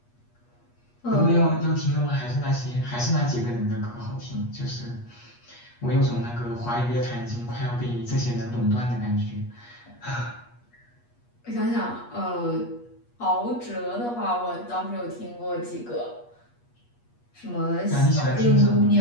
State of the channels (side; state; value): right; late; 8.4 ms